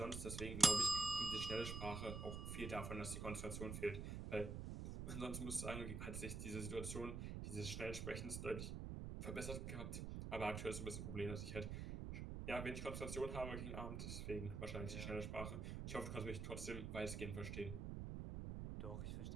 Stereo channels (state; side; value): noise; right; rumble, 4 dB below the sound